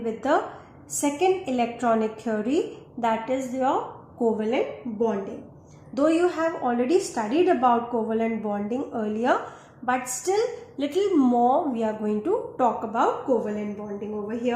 with the second electronic theory, that is your covalent bonding. Though you have already studied about covalent bonding earlier, but still little more we are going to talk about covalent bonding over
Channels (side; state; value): both; identical; correlation 1.00